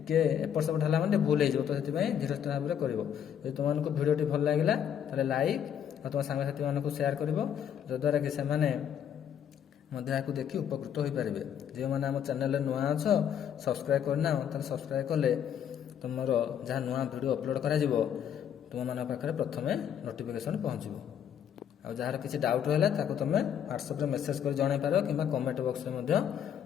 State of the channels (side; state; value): right; quieter; 9.0 dB